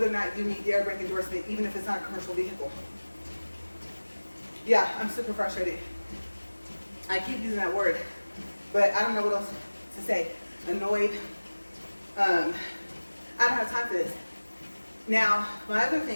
or not you meet the air brake endorsement, even if it's not a commercial vehicle. Yeah, I'm super frustrated. I keep using that word, but I don't know what else to say. Annoyed. I don't have time for this. Now, my other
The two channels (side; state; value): both; inverted; correlation -1.00